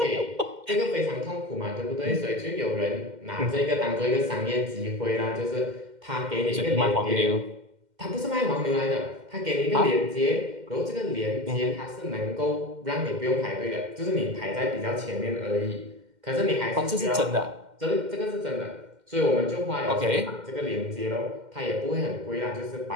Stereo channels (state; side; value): late; left; 2.1 ms